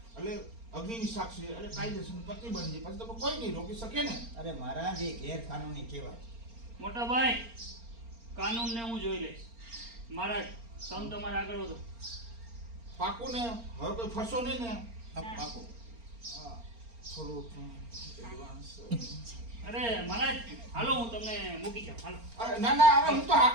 એટલે અગ્નિની સાક્ષી એટલે કાયદેસર પતિ બની જાય. પછી તમે કોઈ નહીં રોકી શકે ને. અરે મહારાજ એ ગેરકાનૂની કહેવાય. મોટા ભાઈ કાનૂન ને હું જોઈ લઈશ. મહારાજ તમે તમારે આગળ વધો. પાકું ને? હવે કોઈ ફરશો નહીં ને? પાકો. હા, થોડું એડવાન્સ. અરે મહારાજ હાલો હું તમને મૂકી જાઉં. હાલો. અરે ના અરે હું તો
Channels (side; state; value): left; late; 4.3 ms